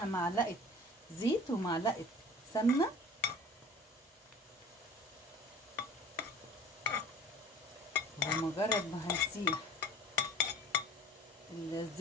معلقة زيت ومعلقة سمنة، ومجرد ما هنسيح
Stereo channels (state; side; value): normal; both; correlation 0.44